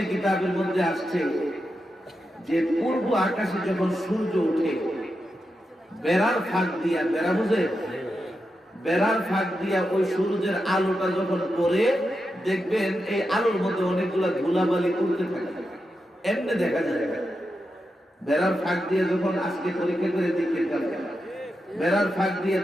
কিতাবের মধ্যে আসছে যে পূর্ব আকাশে যখন সূর্য ওঠে, বেড়ার ফাঁক দিয়া, বেড়া বুঝে, বেড়ার ফাঁক দিয়া ওই সূর্যের আলোটা যখন পড়ে, দেখবেন এই আলোর মধ্যে অনেকগুলা ধুলাবালি উড়তে থাকে, এমনি দেখা যায়। বেড়ার ফাঁক দিয়ে যখন আজকে পরীক্ষা করে দেখে বেড়ার ফাঁক দিয়ে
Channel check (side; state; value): both; normal; correlation 0.88